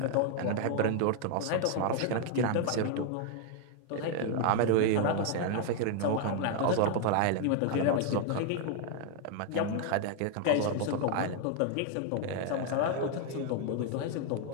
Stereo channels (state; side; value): different; both; correlation 0.00